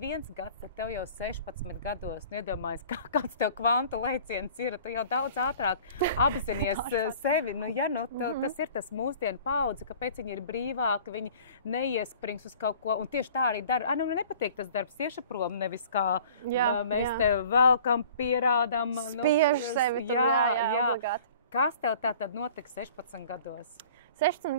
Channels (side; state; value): both; inverted; correlation -0.48